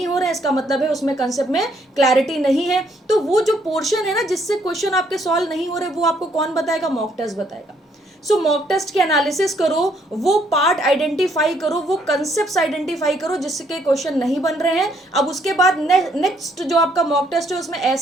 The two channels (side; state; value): both; normal; correlation 0.69